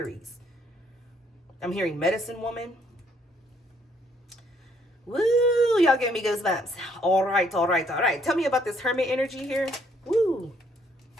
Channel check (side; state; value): both; normal; correlation 0.67